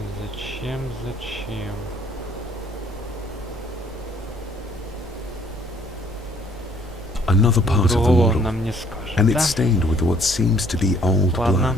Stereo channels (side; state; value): both; normal; correlation 0.61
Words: Зачем, зачем? Another part of the Другого он model. нам не скажет, And да? it's stained with what seems to be old Ладно.